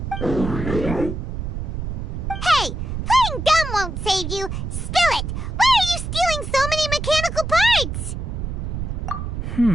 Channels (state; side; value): noise; right; rumble, 4 dB below the sound